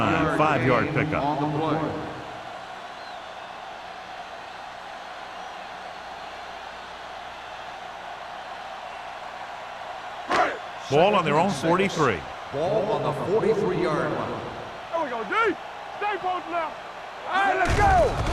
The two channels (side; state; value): both; identical; correlation 1.00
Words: 5-yard pickup. On the play. Ball on their own 43. Ball on the 43-yard line. There we go, D. Stay posted now. All right, let's go.